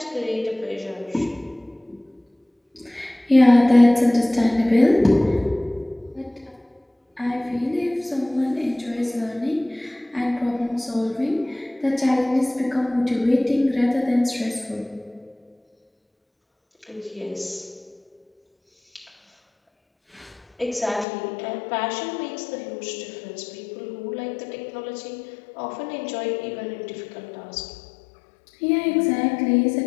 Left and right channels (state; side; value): drops out; right; at 21.1 s